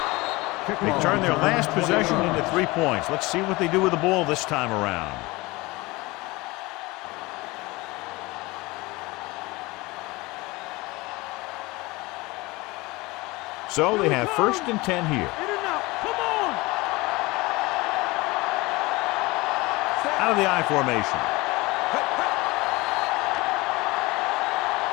They turn their last possession into 3 points. Let's see what they do with the ball this time around. So they have 1st and 10 here. Out of the I formation.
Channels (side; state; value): right; quieter; 22.4 dB